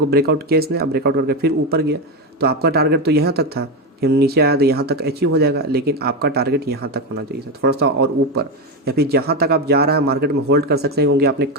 ब्रेकआउट किया इसने, अब ब्रेकआउट करके फिर ऊपर गया। तो आपका टारगेट तो यहाँ तक था कि नीचे आया तो यहाँ तक अचीव हो जाएगा, लेकिन आपका टारगेट यहाँ तक होना चाहिए था, थोड़ा सा और ऊपर, या फिर जहाँ तक आप जा रहा है मार्केट में होल्ड कर सकते हैं, क्योंकि आपने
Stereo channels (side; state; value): both; normal; correlation 0.13